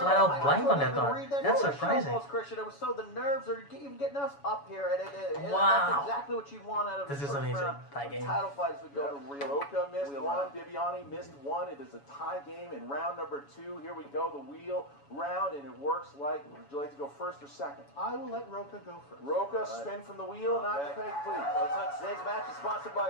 out nervous. blank on that couldn't one. read that That's English surprising. almost, Christian. It was so the nerves are even getting us up here, and Wow. that's exactly what you want out of This the is first amazing. round. Tie game. Title fights would go to real. Rocha missed wheel 1. round. Bibbiani missed 1. It is a tie game in round number 2. Here we go. The wheel round, and it works like. Would you like to go first or second? I will let Rocha go first. Rocha, spin from the wheel, not the Okay. peg, please. Let's not- Today's match is sponsored by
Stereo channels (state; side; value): late; right; 7.1 ms